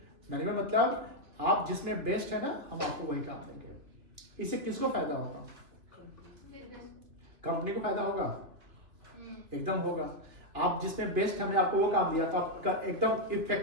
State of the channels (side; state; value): left; late; 2.8 ms